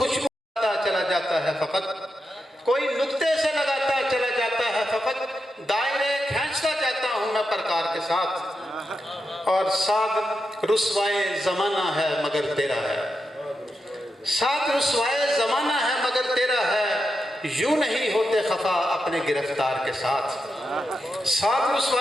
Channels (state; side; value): normal; both; correlation 0.87